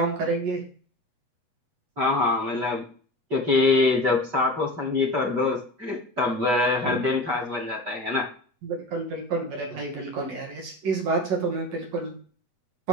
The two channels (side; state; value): left; late; 8.2 ms